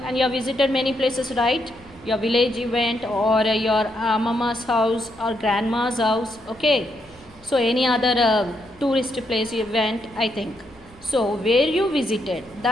and you have visited many places, right? Your village event or your mama's house or grandma's house, okay? So, any other tourist place event, I think. So, where you visited,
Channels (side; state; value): left; noise; hum, 27 dB below the sound